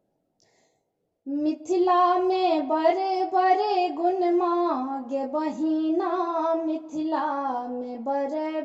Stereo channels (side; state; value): both; identical; correlation 1.00